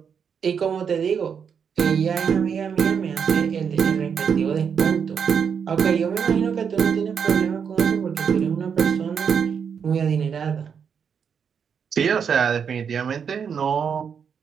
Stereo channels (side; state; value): left; quieter; 7.0 dB